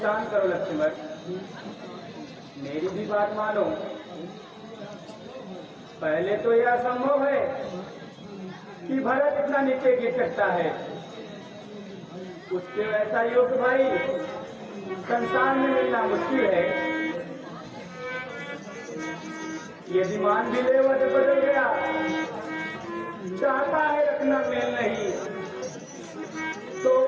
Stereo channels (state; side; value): identical; both; correlation 1.00